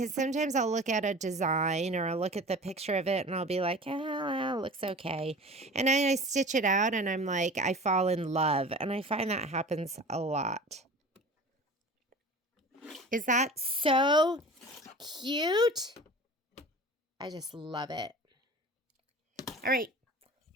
sometimes I'll look at a design or I'll look at the picture of it and I'll be like, oh, it looks okay. And then I stitch it out and I'm like, I fall in love. And I find that happens a lot. Is that so cute? I just love it. All right,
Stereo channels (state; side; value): normal; both; correlation 0.38